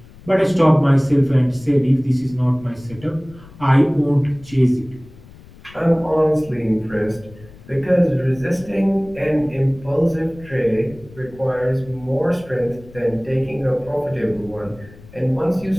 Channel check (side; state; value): left; noise; rumble, 21 dB below the sound